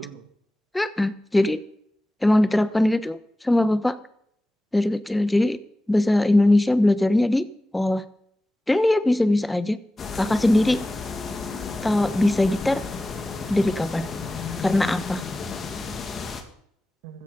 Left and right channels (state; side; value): normal; both; correlation 0.97